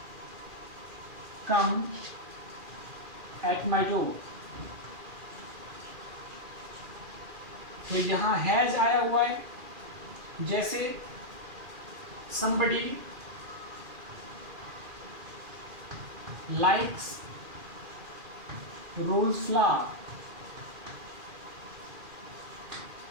come at my door. तो यहां हैज आया हुआ है। जैसे somebody likes rose flower।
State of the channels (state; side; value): late; left; 2.4 ms